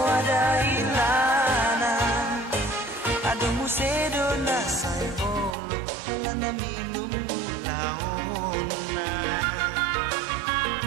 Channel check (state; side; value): drops out; left; at 5.5 s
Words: ilana. Aduh musedo na say bolo wala na minum laona.